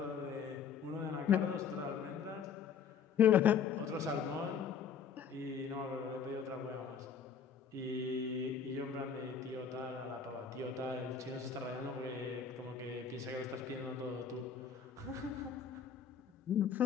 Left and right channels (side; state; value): right; quieter; 6.7 dB